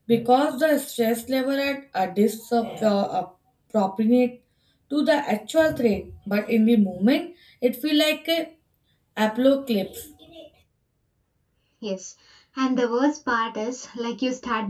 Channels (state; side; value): identical; both; correlation 1.00